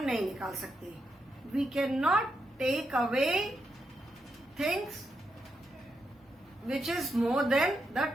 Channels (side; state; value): both; normal; correlation 0.83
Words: नहीं निकाल सकते. We can not take away things which is more than the